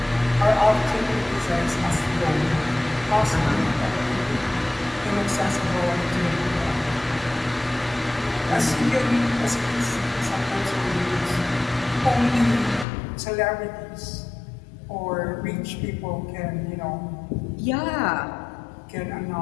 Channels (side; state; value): right; drops out; at 12.9 s